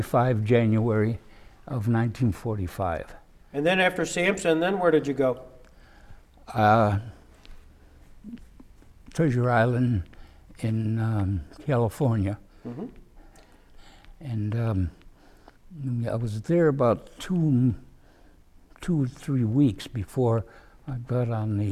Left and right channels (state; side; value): identical; both; correlation 1.00